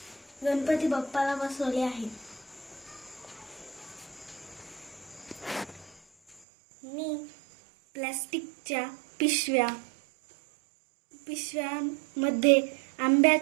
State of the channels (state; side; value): drops out; left; at 6.4 s